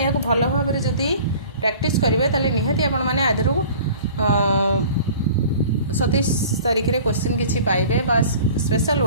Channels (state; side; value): inverted; both; correlation -0.44